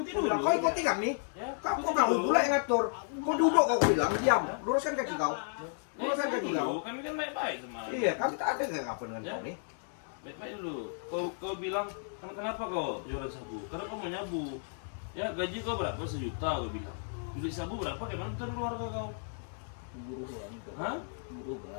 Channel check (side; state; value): right; silent; digital silence